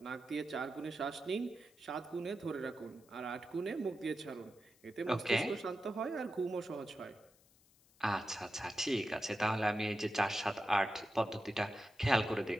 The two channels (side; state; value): left; noise; hiss, 29 dB below the sound